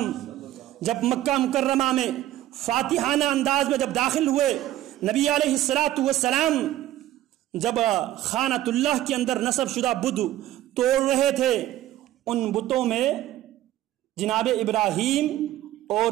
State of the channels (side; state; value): left; quieter; 14.1 dB